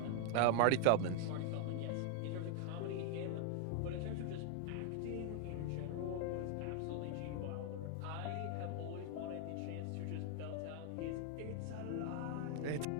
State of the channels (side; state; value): both; different; correlation 0.00